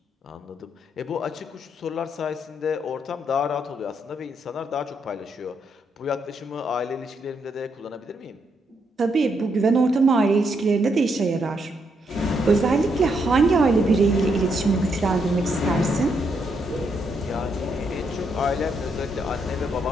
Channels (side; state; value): both; normal; correlation 0.77